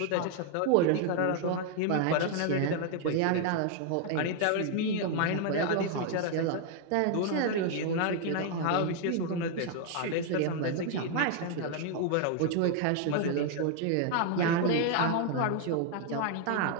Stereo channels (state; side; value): different; both; correlation 0.00